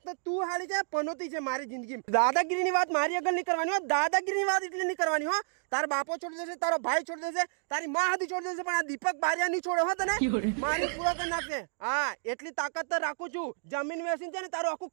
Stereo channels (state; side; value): silent; left; digital silence